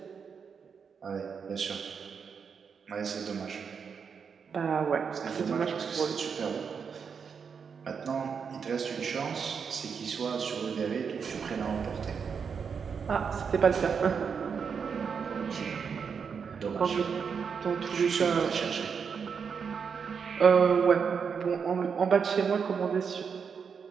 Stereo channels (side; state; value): left; quieter; 6.3 dB